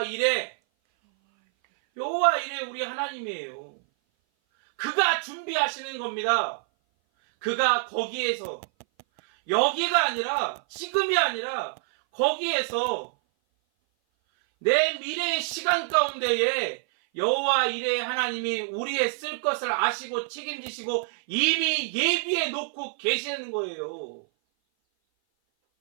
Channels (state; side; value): silent; left; 57 dB below the other